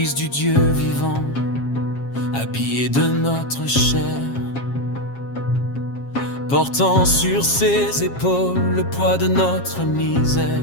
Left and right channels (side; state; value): right; late; 7.4 ms